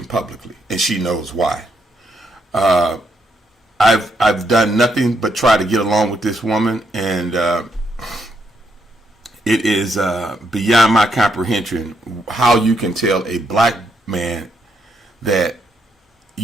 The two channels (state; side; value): normal; both; correlation 0.76